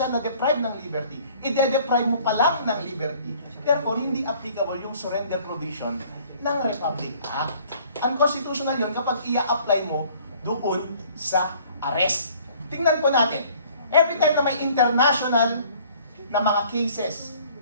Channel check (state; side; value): inverted; both; correlation -0.55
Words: na-deprive ng liberty. I-deprive mo pa lang ng liberty. Therefore, hindi applicable yung surrender provision ng Republic Act. Unconstitutional yun kapag i-apply mo doon sa arrest. Tingnan po natin. Every time na may international na mga cases